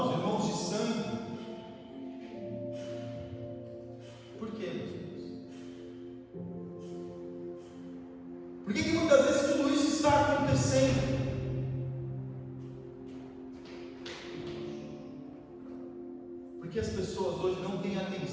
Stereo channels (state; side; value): identical; both; correlation 1.00